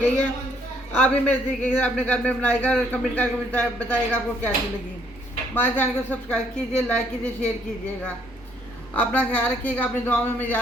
है। आप भी मेरे तरीके से अपने घर में बनाएगा और कमेंट करके बताइएगा आपको कैसी लगी। हमारे चैनल को सब्सक्राइब कीजिए, लाइक कीजिए, शेयर कीजिएगा। अपना ख्याल रखिएगा, अपनी दुआओं में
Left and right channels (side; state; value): both; normal; correlation 0.67